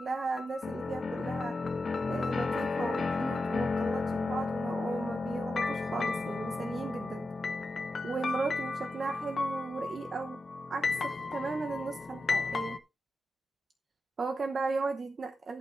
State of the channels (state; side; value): normal; both; correlation 0.89